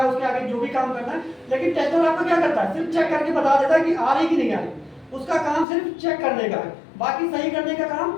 है, उसके आगे जो भी काम करना है। लेकिन टेस्टर आपका क्या करता है, सिर्फ चेक करके बता देता है कि आ रही कि नहीं आ रही। उसका काम सिर्फ चेक करने का है, बाकी सही करने का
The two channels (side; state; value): right; drops out; at 5.7 s